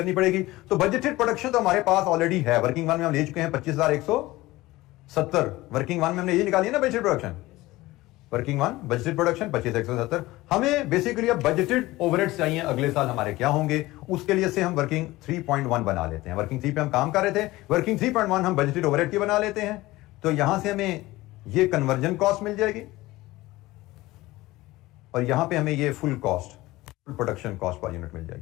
पड़ेगी। तो बजटेड प्रोडक्शन तो हमारे पास ऑलरेडी है, वर्किंग वन में हम ले चुके हैं 25,170। वर्किंग वन में हमने ये निकाली है ना budgeted production, working one budgeted production 25,170। हमें बेसिकली अब बजटेड ओवरहेड्स चाहिए अगले साल हमारे क्या होंगे, उसके लिए से हम वर्किंग 3.1 बना लेते हैं। वर्किंग 3 पे हम काम कर रहे थे, वर्किंग 3.1 हम बजटेड ओवरहेड की बना लेते हैं। तो यहां से हमें ये कन्वर्जन कॉस्ट मिल जाएगी और यहां पे हमें ये full cost, full production cost per unit मिल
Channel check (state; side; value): quieter; right; 18.7 dB